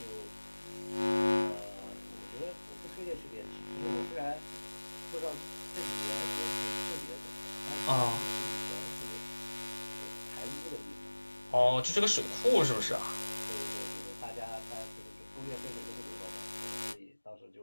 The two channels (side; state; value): both; inverted; correlation -1.00